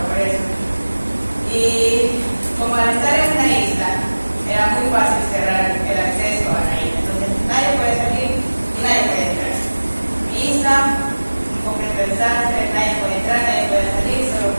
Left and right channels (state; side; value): inverted; both; correlation -1.00